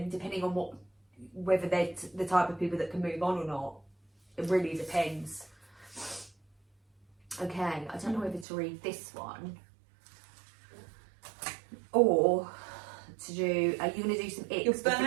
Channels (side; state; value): left; drops out; at 8.5 s